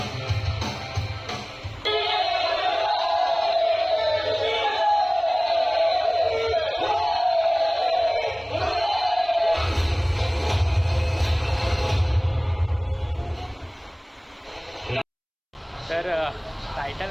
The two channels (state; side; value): identical; both; correlation 1.00